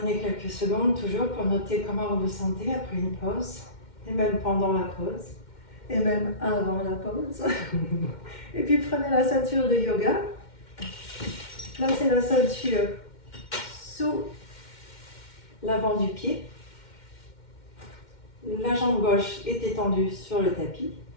quelques secondes toujours pour noter comment vous vous sentez après une pause, et même pendant la pause, et même avant la pause. Et puis prenez la ceinture de yoga. Placez la ceinture sous l'avant du pied. La jambe gauche est étendue sur le tapis.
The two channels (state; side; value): late; right; 2.1 ms